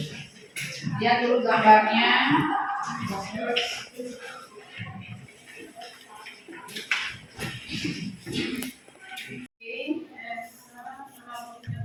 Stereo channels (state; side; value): identical; both; correlation 1.00